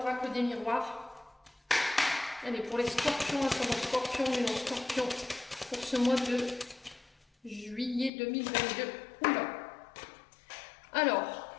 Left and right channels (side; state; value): right; drops out; at 8.1 s